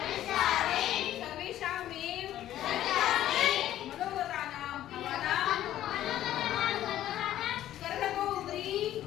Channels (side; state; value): right; quieter; 12.7 dB